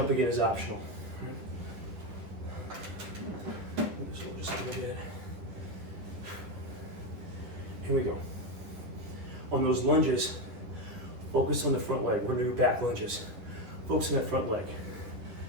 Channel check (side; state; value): left; late; 10 ms